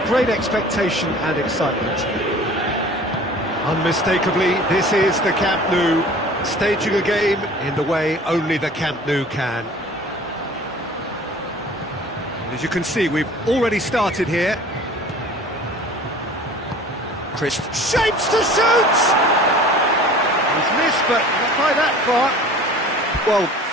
great expectation and excitement. Unmistakably, this is the Camp Nou, staging a game in the way only the Camp Nou can. And as you can see, we've already started here. Chris shapes to shoot! He's missed, but not by that far. Well,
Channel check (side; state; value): both; normal; correlation 0.45